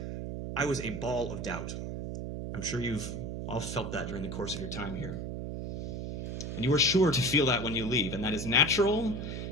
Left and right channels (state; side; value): noise; right; hum, 5 dB below the sound